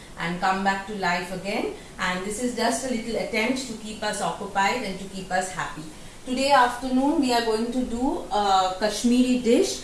and come back to life again, and this is just a little attempt to keep us occupied and to keep us happy. Today afternoon we are going to do a Kashmiri dish,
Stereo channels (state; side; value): identical; both; correlation 1.00